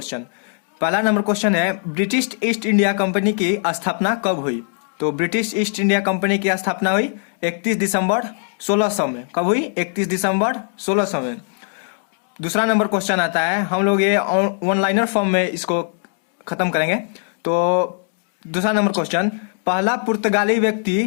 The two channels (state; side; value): silent; right; 56 dB below the other